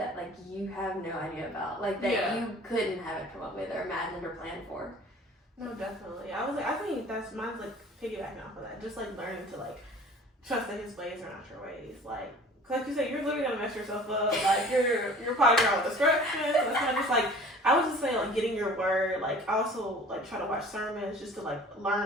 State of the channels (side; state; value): both; normal; correlation 0.46